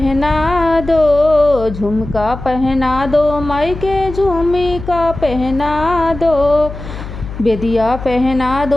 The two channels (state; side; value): noise; left; hum, 11 dB below the sound